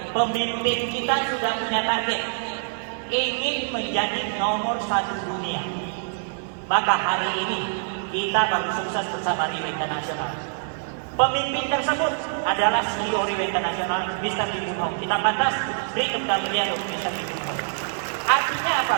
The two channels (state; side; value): silent; left; 56 dB below the other